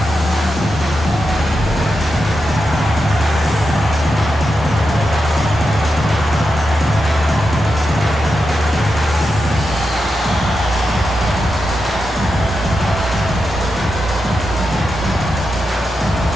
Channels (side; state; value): both; normal; correlation 0.88